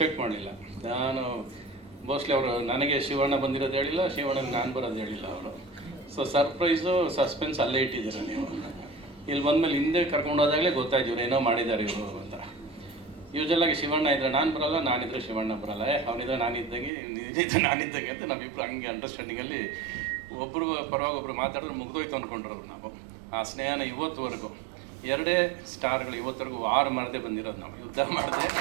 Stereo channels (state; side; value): drops out; left; at 16.9 s